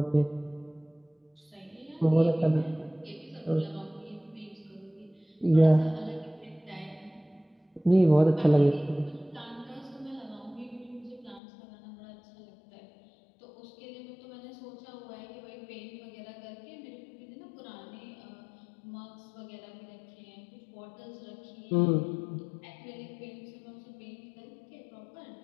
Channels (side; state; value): right; drops out; at 11.4 s